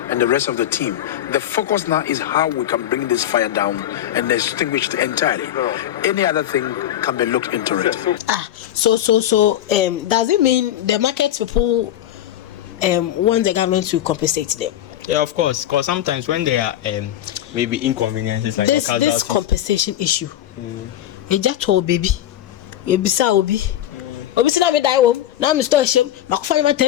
and the rest of the team. The focus now is how we can bring this fire down and extinguish it entirely. Any other thing can be looked into it. So does it mean the market people want the government to compensate them? Yeah, of course. Because sometimes when there are maybe inconveniences like this compensation issue, you just told baby, you be so obi. Obi say na me die wo. Now me store shame. Makufa you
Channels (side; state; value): right; quieter; 12.1 dB